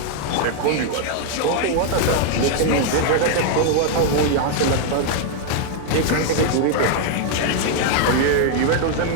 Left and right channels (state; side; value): different; both; correlation 0.00